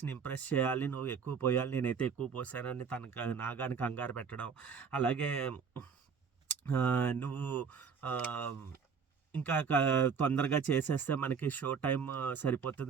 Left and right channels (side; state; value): left; quieter; 6.2 dB